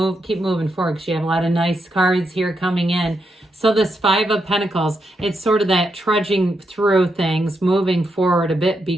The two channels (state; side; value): normal; both; correlation 0.82